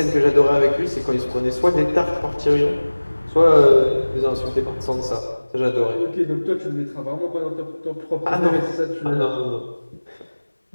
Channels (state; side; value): inverted; both; correlation -1.00